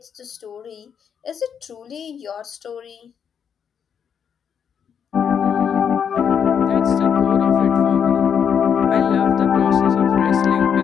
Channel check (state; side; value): quieter; right; 7.6 dB